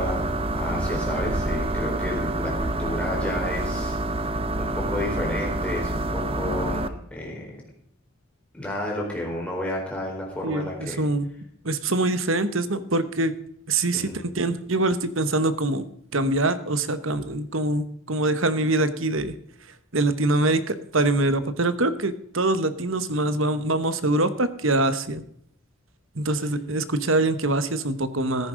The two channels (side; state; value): both; normal; correlation 0.27